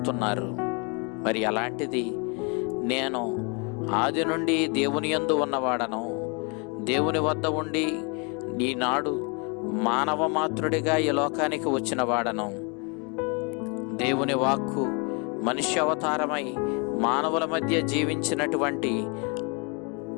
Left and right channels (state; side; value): quieter; right; 33.3 dB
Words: మరి అలాంటిది నేను ఆది నుండి దేవుని యందు ఉన్నవాడను, దేవుని వద్ద ఉండి ఈనాడు మానవ మాతృడిగా ఈ లోకానికి వచ్చిన వాడను. దేవుని వాక్కు మనుష్య అవతారమై మానవుల మధ్య జీవించినటువంటి